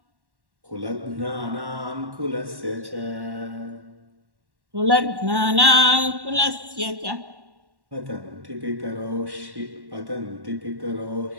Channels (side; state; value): left; late; 1.1 ms